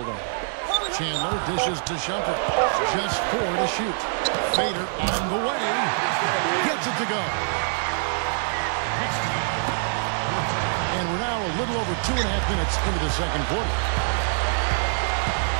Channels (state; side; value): silent; left; digital silence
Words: on. Chandler dishes to Shumpert. Just 4 to shoot. Fader on the way. Gets it to go. And we're now a little over 2.5 minutes into the second quarter.